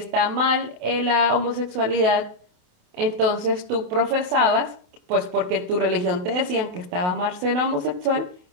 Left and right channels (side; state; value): left; late; 28 ms